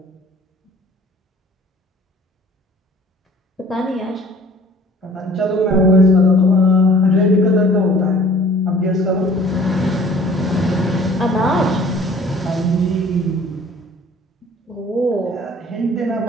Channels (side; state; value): both; normal; correlation 0.51